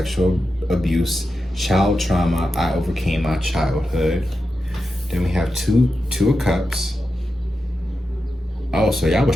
Abuse, Child Trauma, I Overcame My Childhood. Then we have two of Cups. Oh, so y'all was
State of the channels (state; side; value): normal; both; correlation 0.89